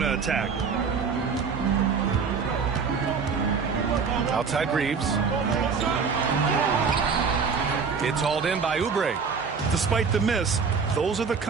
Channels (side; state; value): left; quieter; 5.5 dB